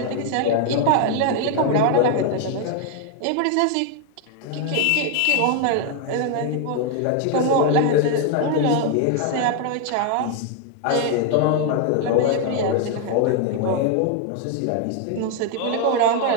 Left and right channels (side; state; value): both; different; correlation 0.00